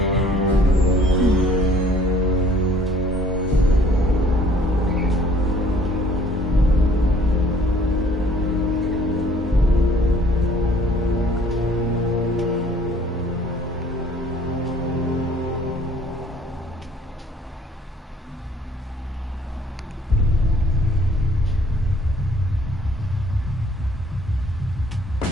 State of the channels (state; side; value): normal; both; correlation 0.57